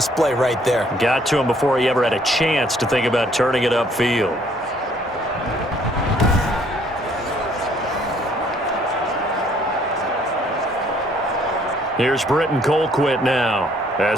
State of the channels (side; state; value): both; normal; correlation 0.63